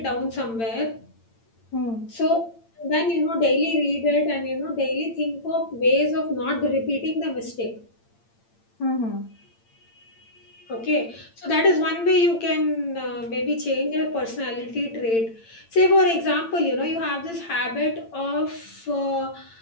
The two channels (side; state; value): right; late; 8.8 ms